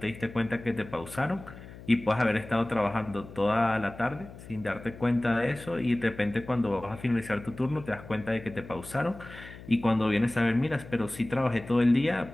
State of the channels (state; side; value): noise; left; hum, 16 dB below the sound